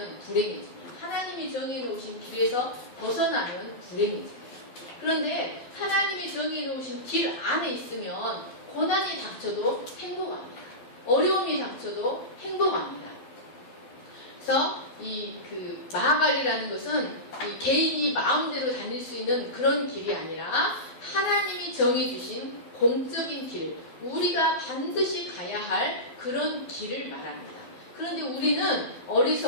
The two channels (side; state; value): right; late; 12 ms